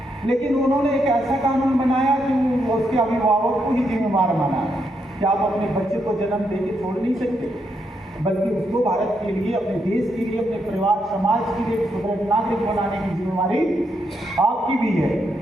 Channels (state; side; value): normal; both; correlation 0.79